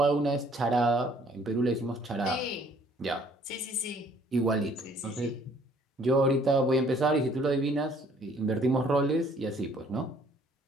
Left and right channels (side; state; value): both; normal; correlation 0.60